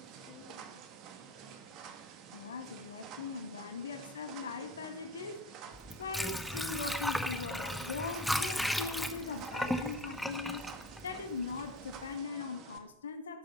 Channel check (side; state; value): both; normal; correlation 0.34